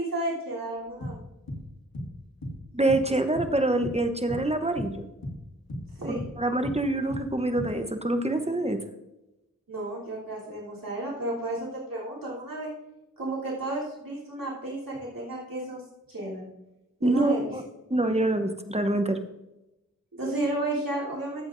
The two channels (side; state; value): both; normal; correlation 0.57